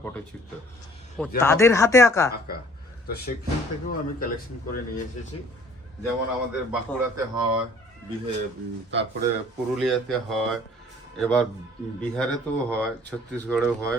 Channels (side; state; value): both; normal; correlation 0.54